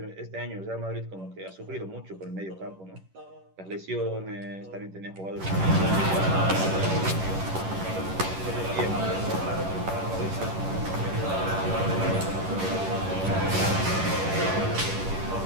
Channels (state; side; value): late; left; 11 ms